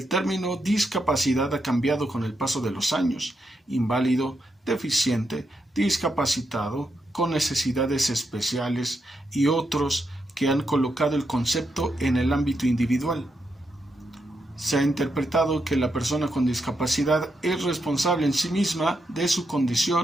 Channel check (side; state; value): both; normal; correlation 0.83